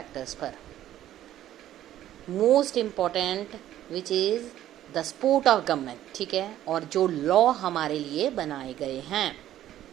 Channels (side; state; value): left; quieter; 12.6 dB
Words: पर. Most important which is the support of government, ठीक है, और जो लॉ हमारे लिए बनाए गए हैं.